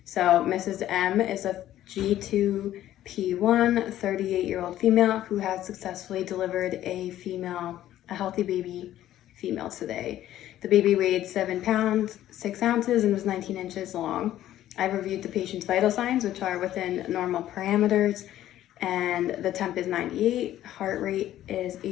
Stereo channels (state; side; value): quieter; right; 12.9 dB